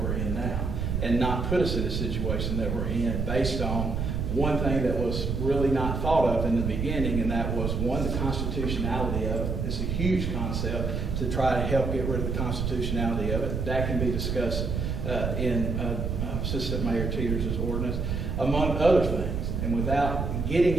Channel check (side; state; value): right; noise; rumble, 1 dB below the sound